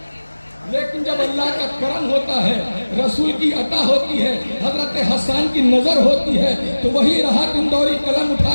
लेकिन जब अल्लाह का करम होता है, रसूल की अता होती है, हजरत हसन की नजर होती है, तो वही राहत इंदौरी कलम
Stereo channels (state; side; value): inverted; both; correlation -1.00